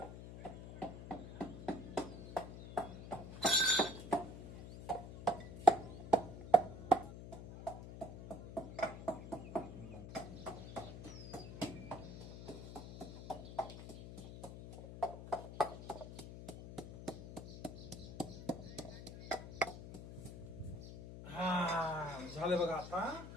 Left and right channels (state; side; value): noise; left; hum, 11 dB below the sound